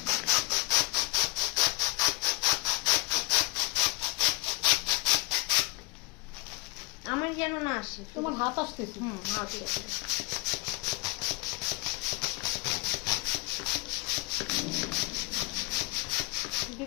আমার যেন না আসে। তোমার হাত আসতেছে। হাত আসে।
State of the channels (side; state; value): right; quieter; 26.6 dB